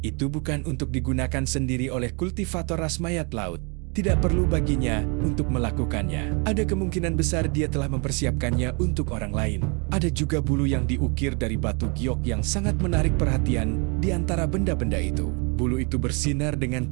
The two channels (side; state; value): left; quieter; 33.4 dB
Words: itu bukan untuk digunakan sendiri oleh kultivator ras mayat laut. Tidak perlu baginya untuk melakukannya. Ada kemungkinan besar dia telah mempersiapkannya untuk orang lain. Ada juga bulu yang diukir dari batu giok yang sangat menarik perhatian di antara benda-benda itu. Bulu itu bersinar dengan